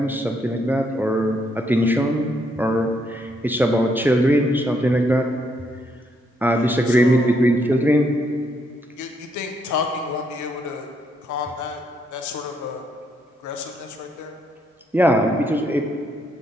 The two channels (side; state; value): both; normal; correlation 0.74